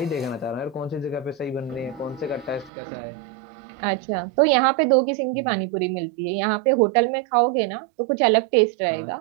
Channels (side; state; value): left; drops out; at 2.7 s